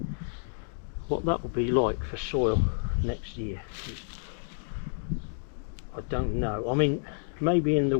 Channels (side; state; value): right; silent; digital silence